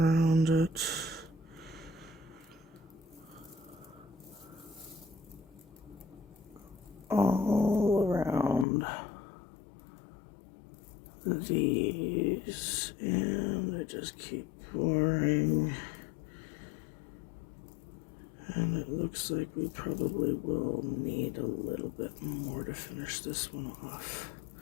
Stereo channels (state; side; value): drops out; right; at 8.7 s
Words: it. All around these, and I just keep pouring, and it looks like we probably will need a little bit more to finish this one off,